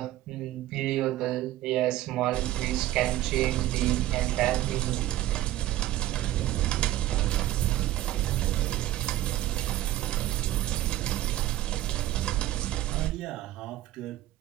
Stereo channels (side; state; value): left; quieter; 14.4 dB